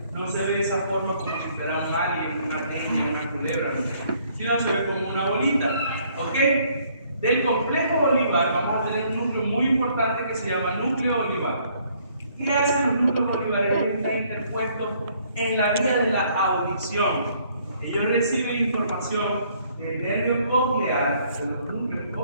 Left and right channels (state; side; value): inverted; both; correlation -0.65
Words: no se ve de esa forma como si fuera un alien, una araña, una culebra, sino se ve como una bolita. ¿Ok? Del complejo olivar vamos a tener un núcleo muy importante que se llama núcleo olivar. ¿Qué hacen los núcleos olivares? Está interpuesto en la vía de la audición. Ellos reciben información del nervio coclear, de los núcleos